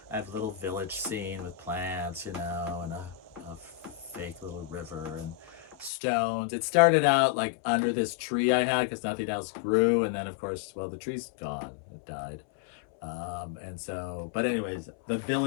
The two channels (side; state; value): right; drops out; at 5.9 s